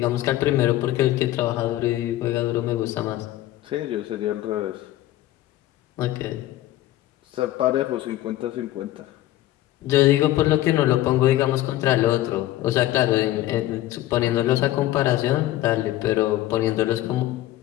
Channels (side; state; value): right; quieter; 14.9 dB